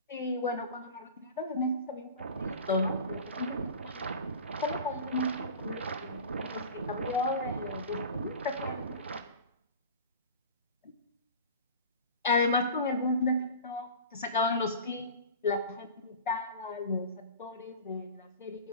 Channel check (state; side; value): inverted; both; correlation -0.35